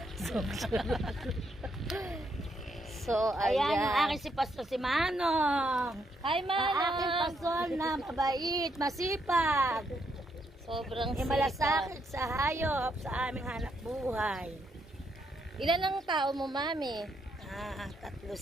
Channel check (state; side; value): normal; both; correlation 0.76